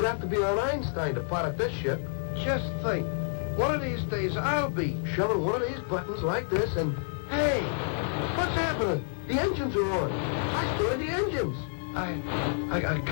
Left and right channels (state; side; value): silent; right; 58 dB below the other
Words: have to be an Einstein to pilot this ship. Just think. One of these days, I'll be shoving one of these buttons like this and... Hey! What's happening? The engines are on. I started the engines. I gotta